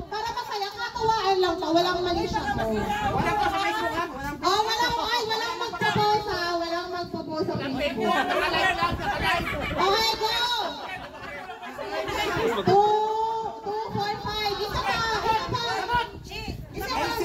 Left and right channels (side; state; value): both; identical; correlation 1.00